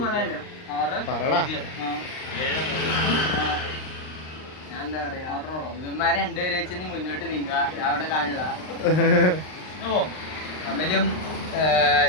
പറടാ. ഞാൻ എന്താ പറയാ, ഇവന്മാരെ രണ്ടുപേരെ വെച്ച് നീ മുന്നോട്ട് നീങ്ങുക, അവിടെ കാണില്ല. അമലും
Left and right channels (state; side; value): late; right; 39 ms